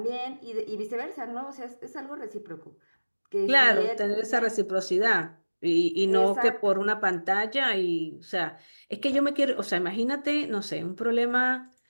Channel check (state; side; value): inverted; both; correlation -1.00